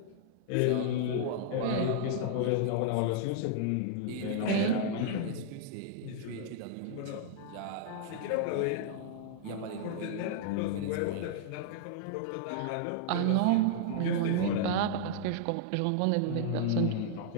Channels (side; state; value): both; different; correlation -0.01